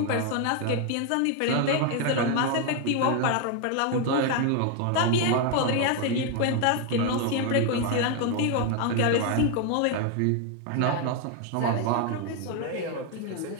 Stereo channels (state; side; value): different; both; correlation 0.01